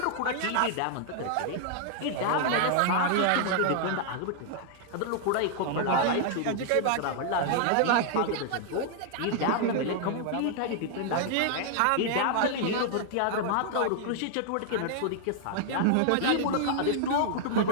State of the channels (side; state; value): both; different; correlation 0.00